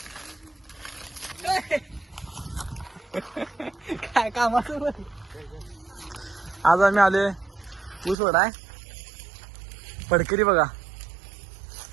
काय कामाचं आज आम्ही आलोय ऊस वाढाय. पडकरी बघा,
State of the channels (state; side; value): drops out; left; at 8.2 s